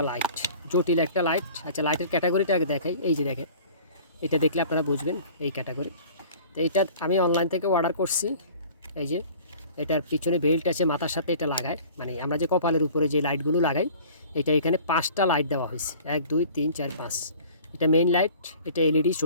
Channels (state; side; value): inverted; both; correlation -0.47